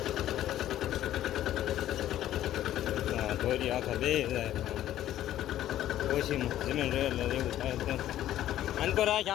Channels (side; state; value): right; quieter; 12.8 dB